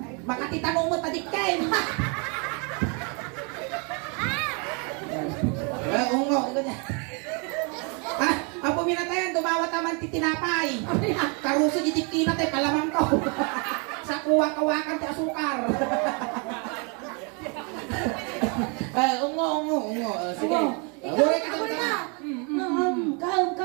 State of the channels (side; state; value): left; quieter; 34.5 dB